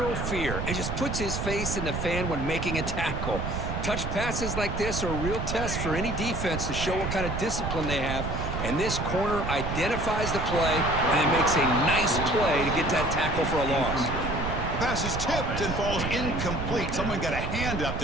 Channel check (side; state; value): right; noise; rumble, 3 dB below the sound